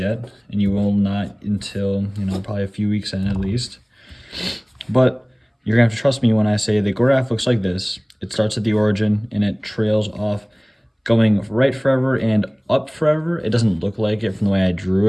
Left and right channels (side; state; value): both; identical; correlation 1.00